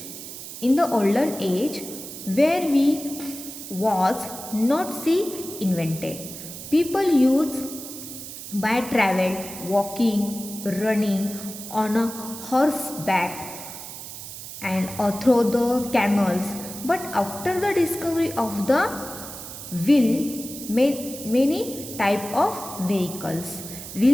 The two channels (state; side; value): noise; right; hiss, 11 dB below the sound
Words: where we was not see invented, people used by travel, walking, running on a horseback and through the camels. But after the discovery of the wheel, many type of vehicles.